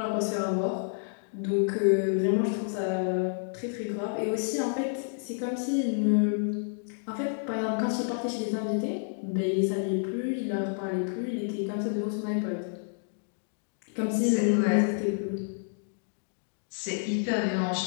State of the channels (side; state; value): right; silent; digital silence